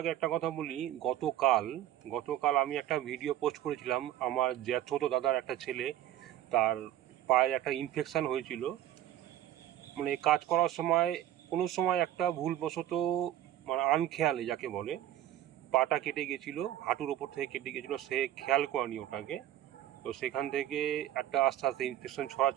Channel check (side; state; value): left; quieter; 12.4 dB